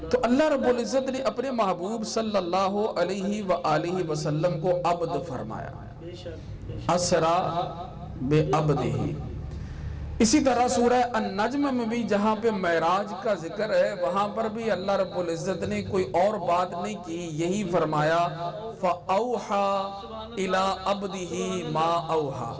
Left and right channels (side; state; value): both; identical; correlation 1.00